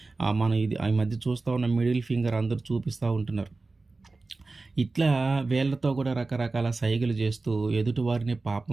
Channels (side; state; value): left; quieter; 3.6 dB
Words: మనం ఇది ఈ మధ్య చూస్తూ ఉన్న మిడిల్ ఫింగర్ అందరూ చూపిస్తూ ఉంటున్నారు. ఇట్లా వేళ్ళతో కూడా రకరకాల సైగలు చేస్తూ ఎదుటివారిని